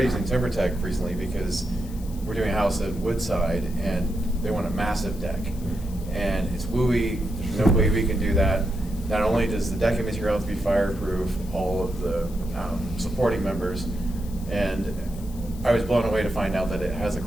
using TimberTech recently because we're doing a house at Woodside, and they want a massive deck, and it's WUI. There's no way we can do that. Not only does the decking material have to be fireproof, all of the supporting members, and I was blown away to find out that it has a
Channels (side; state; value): left; noise; hiss, 20 dB below the sound